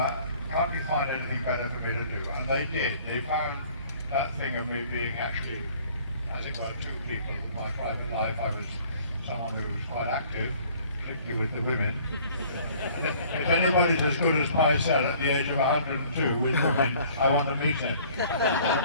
you find anything better for me to do? And they did. They found that thing of me being actually, as it were, two people. In my private life, I was someone who was quite active, particularly with the women. And if anybody's as good as Pycelle at the age of 102 with women, I want to meet him.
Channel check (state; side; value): inverted; both; correlation -0.54